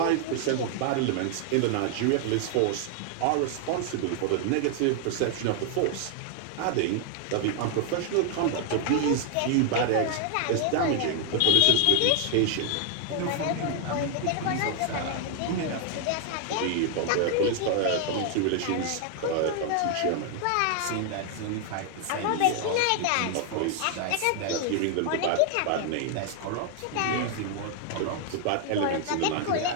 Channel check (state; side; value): different; both; correlation 0.00